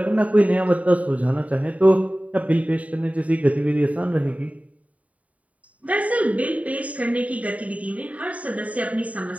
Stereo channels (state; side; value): late; left; 0.069 ms